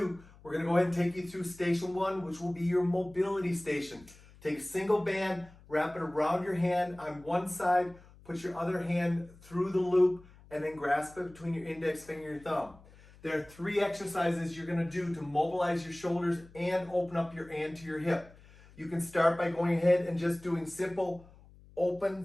We're going to go ahead and take you through station 1, which will be your mobility station. Take a single band, wrap it around your hand on one side, put your other hand through the loop, and then grasp it between your index finger and your thumb. There are 3 exercises you're going to do to mobilize your shoulders and open up your anterior hip. You can start by going ahead and just doing simple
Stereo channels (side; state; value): left; noise; hum, 23 dB below the sound